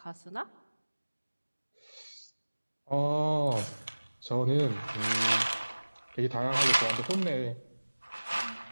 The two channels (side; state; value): both; inverted; correlation -1.00